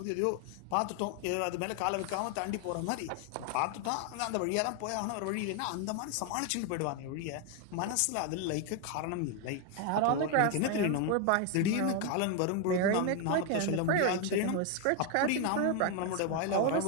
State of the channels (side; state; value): both; different; correlation 0.01